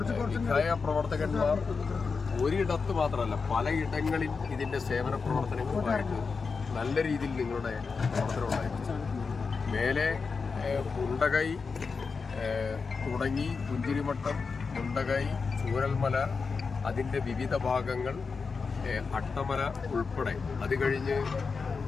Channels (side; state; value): right; quieter; 4.9 dB